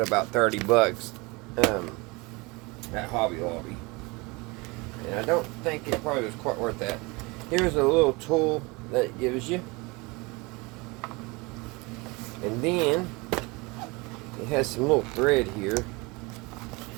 $30. At Hobby Lobby, and I don't think it probably was quite worth that. Here's a little tool that it gives you, and then it has some little thread here.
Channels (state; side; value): quieter; left; 25.7 dB